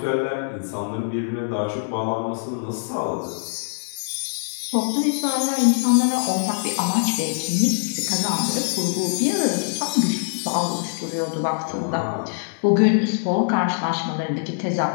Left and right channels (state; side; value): silent; right; 63 dB below the other